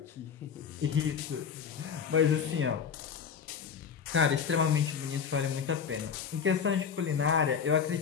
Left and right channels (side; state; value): right; quieter; 7.0 dB